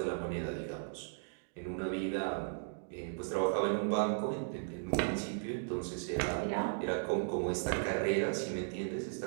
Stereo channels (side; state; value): left; silent; digital silence